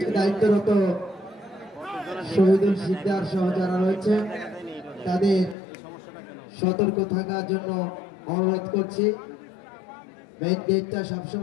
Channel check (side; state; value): right; drops out; at 5.6 s